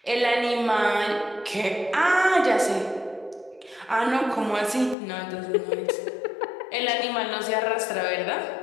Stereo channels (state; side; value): drops out; right; at 5.0 s